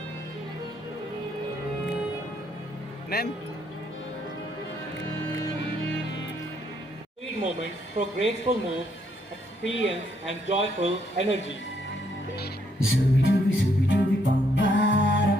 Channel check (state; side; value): normal; both; correlation 0.72